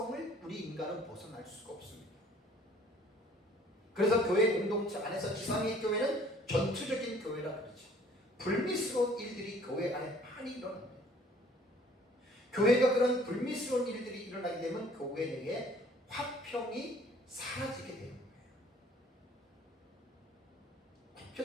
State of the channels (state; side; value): normal; both; correlation 0.55